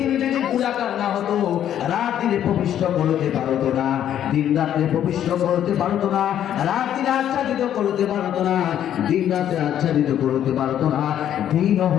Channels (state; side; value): quieter; right; 10.5 dB